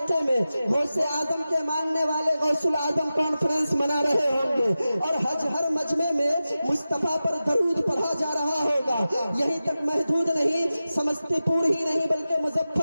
में गौसे आजम के मानने वाले गौसुल आजम कॉन्फ्रेंस मना रहे होंगे और हर मजमे में मुस्तफा पर दरूद पढ़ा जा रहा होगा। यहीं तक महदूद नहीं, समस्तीपुर ही नहीं बल्कि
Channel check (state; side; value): inverted; both; correlation -0.94